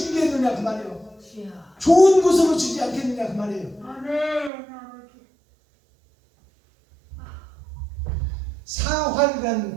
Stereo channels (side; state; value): left; drops out; at 4.5 s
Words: 그 말이에요. 좋은 곳으로 주지 않겠느냐 그 말이에요.